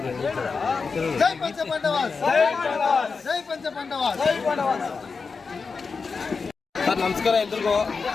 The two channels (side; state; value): right; quieter; 4.8 dB